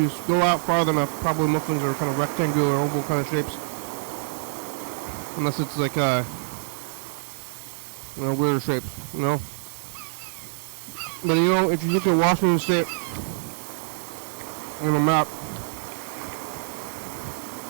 go out farther enough, probably most things are kind of rectangular, oval kind of shapes. Unless it's like, you know, weirder shapes, you know. But you know, if you look at Washington State on a map,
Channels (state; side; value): silent; left; 61 dB below the other